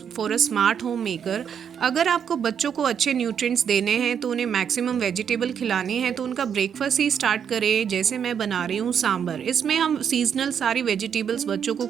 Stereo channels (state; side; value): quieter; left; 7.9 dB